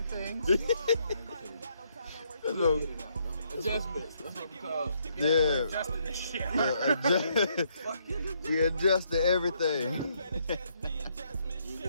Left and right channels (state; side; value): inverted; both; correlation -0.73